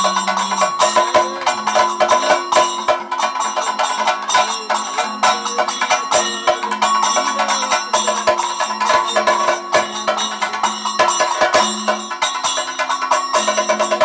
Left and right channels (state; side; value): identical; both; correlation 1.00